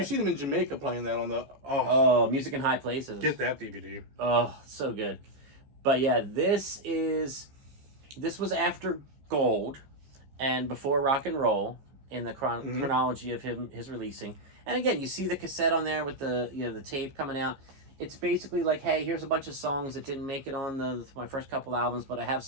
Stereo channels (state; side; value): late; left; 15 ms